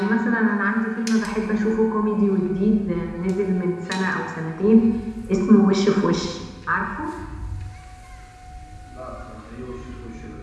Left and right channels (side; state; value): both; identical; correlation 1.00